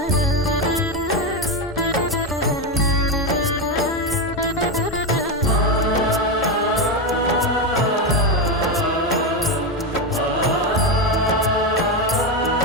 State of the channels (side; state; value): both; normal; correlation 0.12